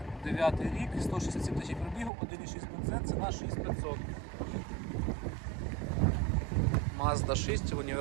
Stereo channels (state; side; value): drops out; left; at 2.1 s